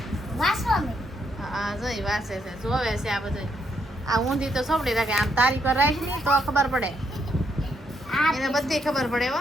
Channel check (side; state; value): both; normal; correlation 0.76